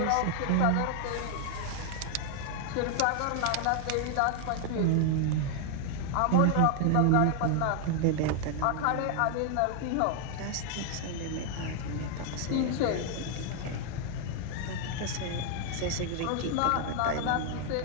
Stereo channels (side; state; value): both; different; correlation 0.00